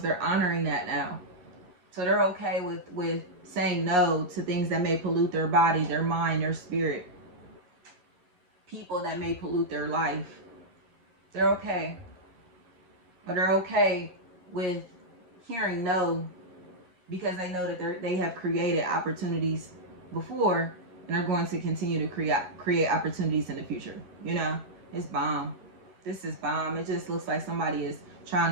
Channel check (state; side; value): late; left; 11 ms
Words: they're honoring that now. So they're okay with saying no to things that may pollute their body, their mind, their spirit. People that may pollute their life. They're okay. But they're okay with hearing no, because they know that they have created opportunities before, and are going to continue to create opportunities in the future. You know, it's bomb. This is bomb. It just looks like somebody is trying